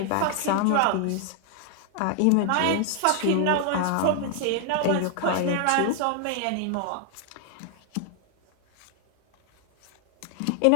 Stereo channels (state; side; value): different; both; correlation 0.00